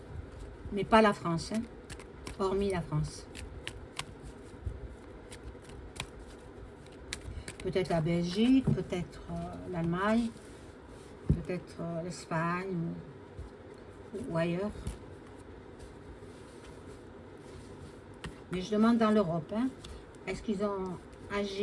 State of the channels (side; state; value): both; identical; correlation 1.00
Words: mais pas la France, hein, hormis la France? Peut-être la Belgique, peut-être l'Allemagne, peut-être l'Espagne. ou ailleurs. Mais je demande dans l'Europe, hein, est-ce qu'ils ont